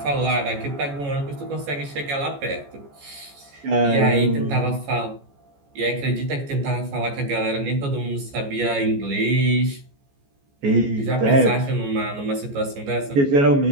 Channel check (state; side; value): late; left; 14 ms